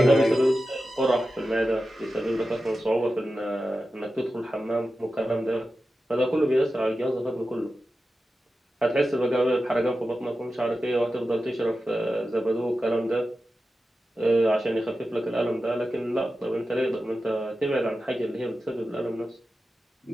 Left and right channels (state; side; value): normal; both; correlation 0.92